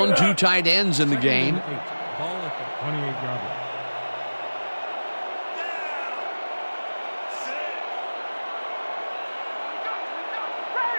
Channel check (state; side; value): inverted; both; correlation -1.00